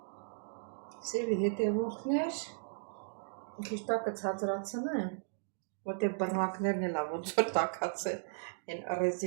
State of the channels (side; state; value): left; silent; digital silence